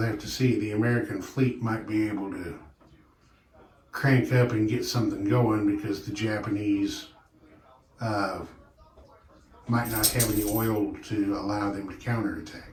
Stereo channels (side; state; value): both; identical; correlation 1.00